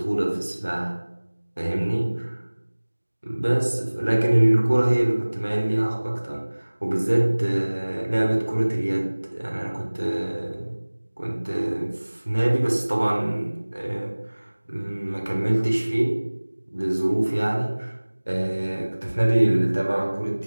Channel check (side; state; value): both; inverted; correlation -1.00